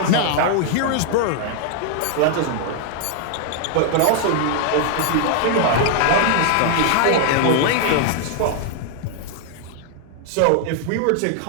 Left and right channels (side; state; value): both; different; correlation 0.00